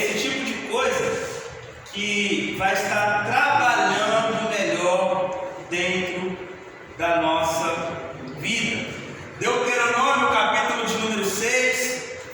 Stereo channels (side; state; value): both; identical; correlation 1.00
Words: tipo de coisa que vai estar trabalhando melhor dentro da nossa vida. Deuteronômio, capítulo de número 6,